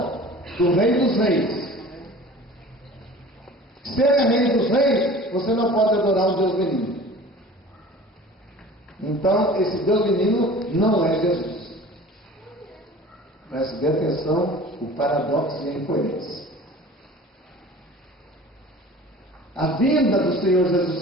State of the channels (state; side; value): normal; both; correlation 0.43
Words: do Rei dos Reis. Se ele é Rei dos Reis, você não pode adorar o Deus menino. Então, esse Deus menino não é Jesus. Preste bem atenção, o paradoxo e a incoerência. A vinda do Senhor